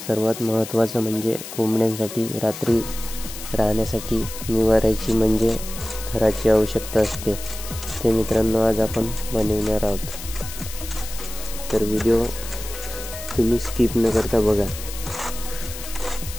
सर्वात महत्त्वाचं म्हणजे कोंबड्यांसाठी रात्री राहण्यासाठी निवाऱ्याची म्हणजे घराची आवश्यकता असते. ते मित्रांनो आज आपण बनवणार आहोत, तर व्हिडिओ तुम्ही स्किप न करता बघा.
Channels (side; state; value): left; noise; hiss, 11 dB below the sound